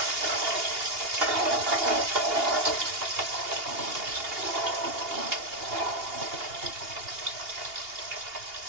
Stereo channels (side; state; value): left; late; 2.8 ms